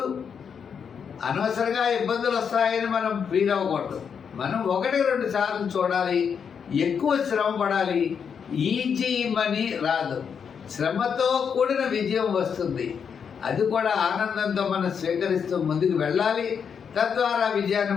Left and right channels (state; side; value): quieter; right; 6.9 dB